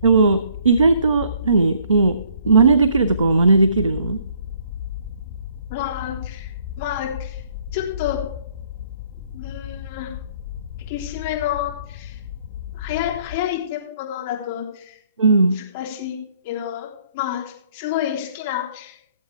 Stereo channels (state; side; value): inverted; both; correlation -0.62